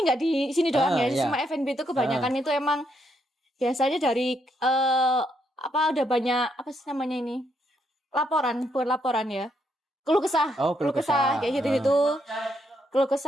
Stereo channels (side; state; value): both; normal; correlation 0.76